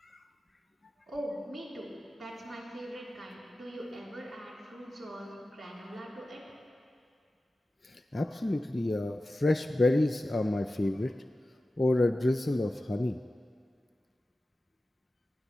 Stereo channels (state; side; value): normal; both; correlation 0.95